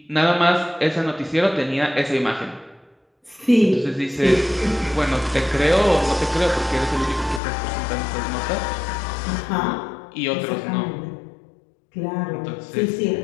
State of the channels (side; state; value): right; drops out; at 7.4 s